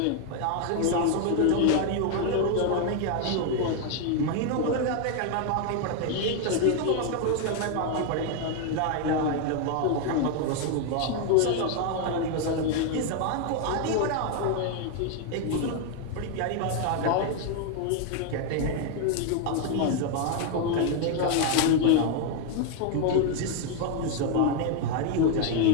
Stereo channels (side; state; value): both; different; correlation 0.01